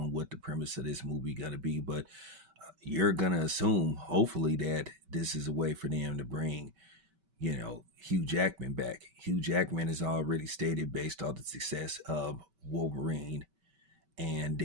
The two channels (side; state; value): left; late; 5.2 ms